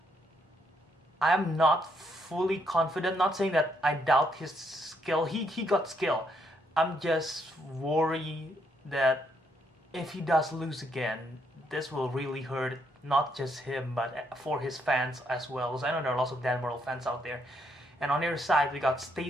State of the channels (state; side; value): normal; both; correlation 0.74